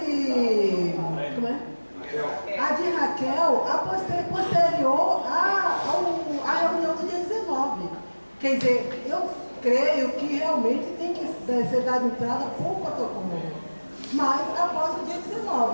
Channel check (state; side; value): inverted; both; correlation -1.00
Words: como é? A de Raquel, posterior à reunião do dia 19. Quer dizer, eu creio que realmente tem que ser dada entrada por protocolo, mas após o dia